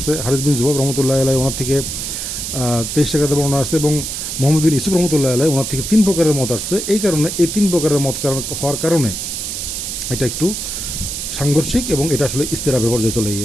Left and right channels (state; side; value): noise; right; hiss, 4 dB below the sound